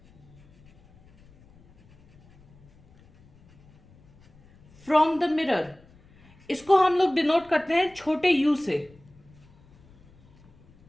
from the mirror, इसको हम लोग डिनोट करते हैं छोटे u से।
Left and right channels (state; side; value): noise; left; rumble, 28 dB below the sound